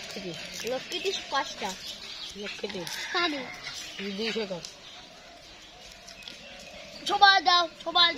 লক্ষ্মীটি 5টা লক্ষ্মী সাড়ে 200 কর সবাই দাও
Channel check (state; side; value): identical; both; correlation 1.00